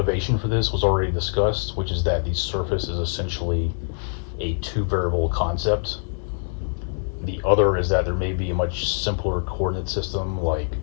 for this was already discussed, which is that the surface is essentially a two-variable concept. The other is that there may be a much simpler coordinate system like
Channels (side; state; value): right; silent; 58 dB below the other